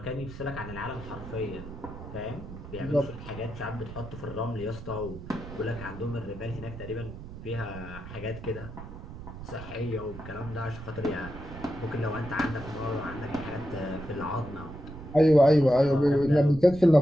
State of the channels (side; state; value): right; noise; rumble, 12 dB below the sound